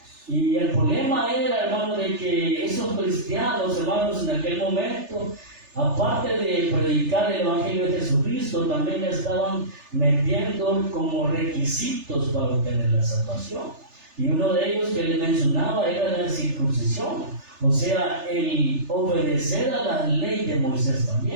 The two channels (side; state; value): left; late; 3.3 ms